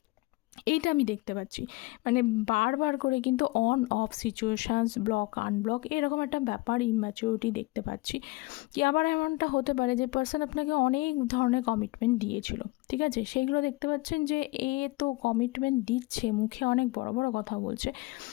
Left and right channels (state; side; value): quieter; right; 22.6 dB